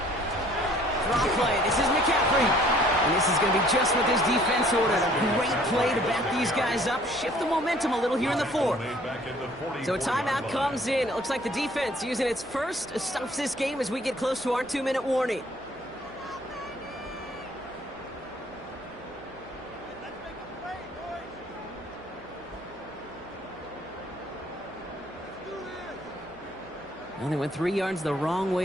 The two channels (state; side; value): noise; right; hum, 25 dB below the sound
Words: Draw play. This is McCaffrey. And this is going to be just what this defense ordered. A great play to back these guys up, shift the momentum a little here in the fourth. So a timeout comes in. It looks like the defense using its first stops this game as we get close to our 2-minute warning. Well, they went 3 yards the wrong